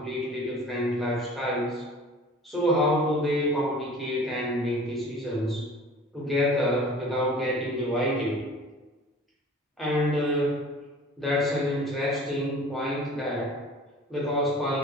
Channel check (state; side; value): normal; both; correlation 0.44